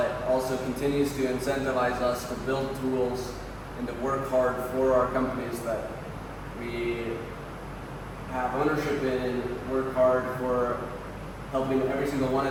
also continues to incentivize us to build tools and to work hard for our companies that we have ownership in, and work hard for helping every single one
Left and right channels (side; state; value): both; identical; correlation 1.00